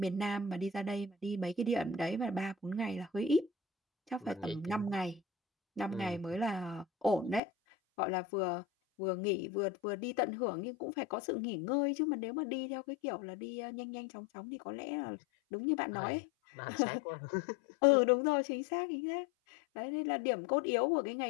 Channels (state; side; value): drops out; right; at 7.4 s